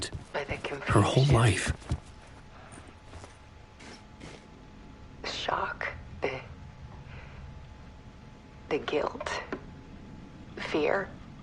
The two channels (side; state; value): both; identical; correlation 1.00